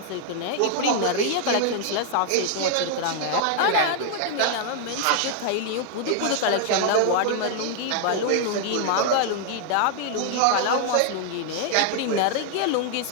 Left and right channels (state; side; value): different; both; correlation 0.00